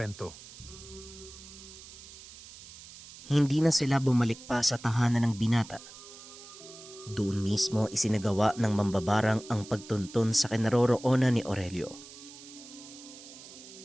Hindi na sila bumalik pa sa tahanan ng binata. Doon mismo isinagawa ng mambabarang ang pagtuntun sa kinaroroonan ni Aurelio.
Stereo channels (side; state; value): right; noise; hiss, 17 dB below the sound